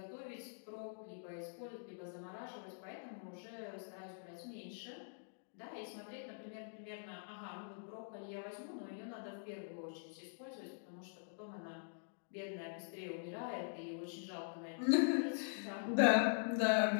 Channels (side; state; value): right; silent; digital silence